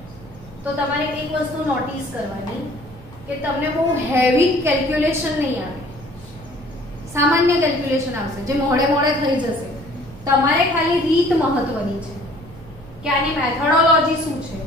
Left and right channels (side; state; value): both; normal; correlation 0.54